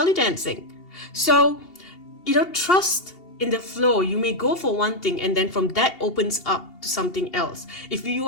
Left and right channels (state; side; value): late; right; 2.8 ms